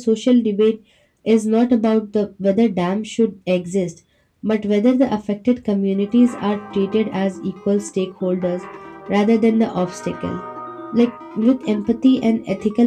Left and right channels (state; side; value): identical; both; correlation 1.00